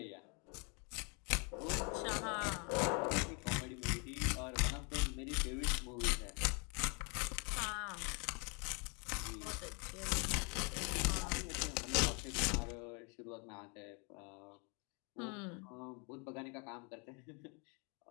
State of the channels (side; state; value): right; quieter; 34.2 dB